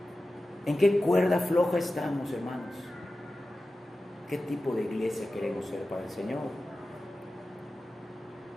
en qué cuerda floja estamos, hermanos. ¿Qué tipo de iglesia queremos ser para el Señor?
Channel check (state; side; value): normal; both; correlation 0.94